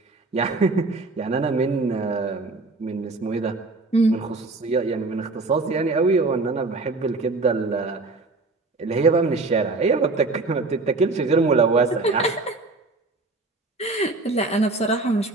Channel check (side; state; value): left; quieter; 3.4 dB